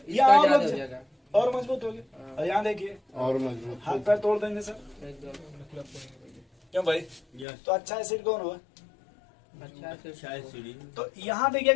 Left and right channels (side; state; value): right; drops out; at 7.5 s